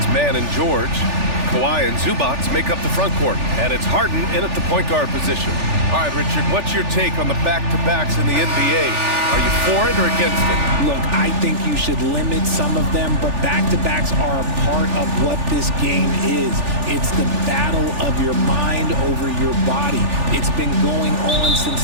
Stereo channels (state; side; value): late; left; 3.4 ms